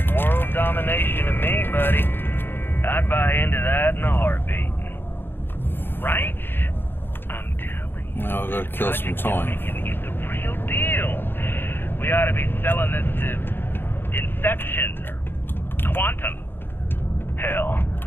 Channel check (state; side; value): late; right; 0.10 ms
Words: world domination to me, buddy. I'd buy into that in a heartbeat. Right? I'm telling you. Now I've got to kill some time. It's the real deal. We ought to be selling this to Inception or Quantum. Hell,